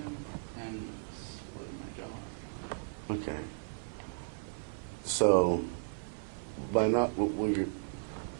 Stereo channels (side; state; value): left; silent; 54 dB below the other